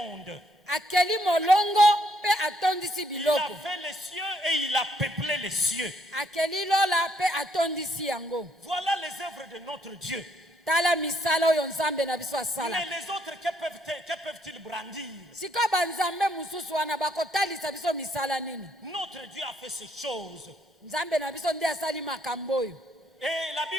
Akeli molongo pe atondisi Il a biloko. fait les cieux et il a peuplé les cieux. Akeli lola pe atondisi yango. Voilà les œuvres de notre Dieu. Tala misala oyo nzambe na biso asala. Mais les autres, que peuvent-ils brandir? Sika banzambe mususu wana bakotalisa biso misala nini? Notre Dieu a fait ces choses. Nzambe na biso nde asali makambo oyo. Et la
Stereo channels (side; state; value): both; normal; correlation 0.70